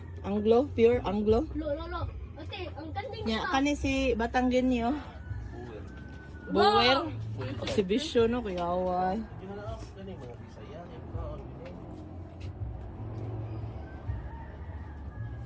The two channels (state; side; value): identical; both; correlation 1.00